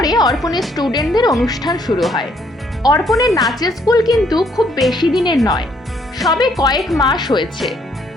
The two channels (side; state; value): both; normal; correlation 0.68